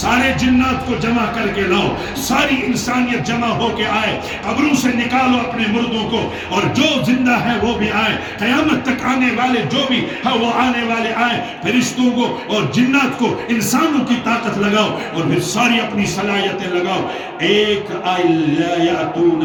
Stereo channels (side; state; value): both; identical; correlation 1.00